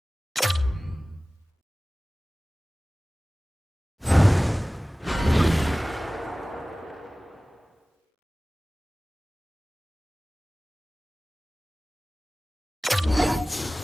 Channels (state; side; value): normal; both; correlation 0.98